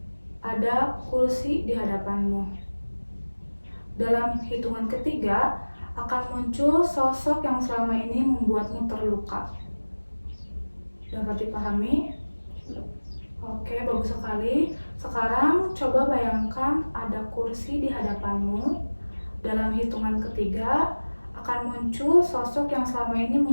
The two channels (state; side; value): inverted; both; correlation -1.00